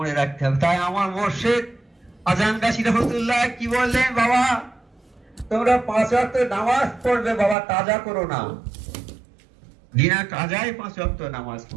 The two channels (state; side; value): drops out; left; at 7.6 s